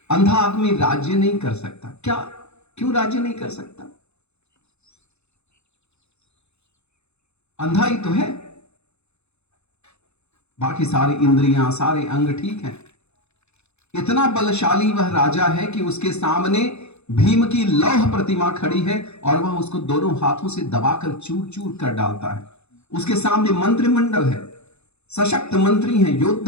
अंधा आदमी राज्य नहीं कर सकता। क्या, क्यों राज्य नहीं कर सकता? अंधा ही तो है, बाकी सारी इंद्रियां, सारे अंग ठीक हैं। इतना बलशाली वह राजा है कि उसके सामने भीम की लौह प्रतिमा खड़ी है और वह उसको दोनों हाथों से दबाकर चूर चूर कर डालता है। उसके सामने मंत्रिमंडल है, सशक्त मंत्री हैं,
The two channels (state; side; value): late; right; 0.81 ms